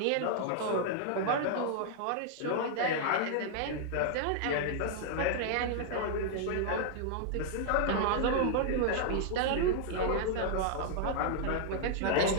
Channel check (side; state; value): both; different; correlation -0.01